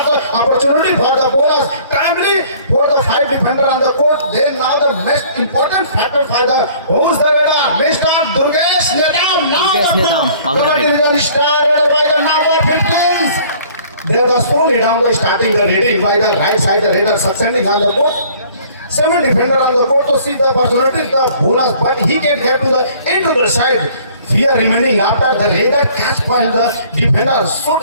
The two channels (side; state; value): both; inverted; correlation -0.54